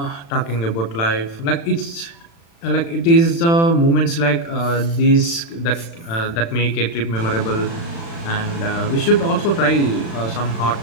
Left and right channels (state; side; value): late; right; 36 ms